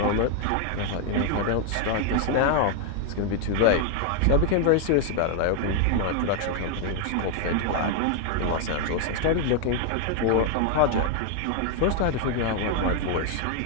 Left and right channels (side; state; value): both; different; correlation 0.00